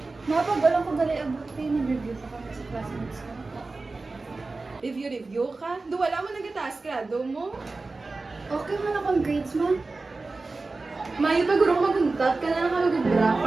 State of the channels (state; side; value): quieter; left; 3.6 dB